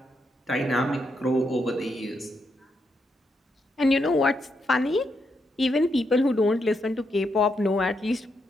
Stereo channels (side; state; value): both; normal; correlation 0.80